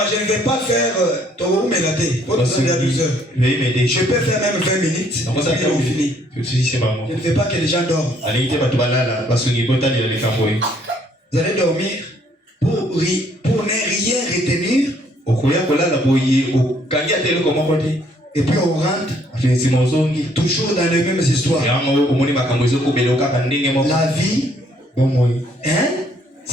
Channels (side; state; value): both; normal; correlation 0.65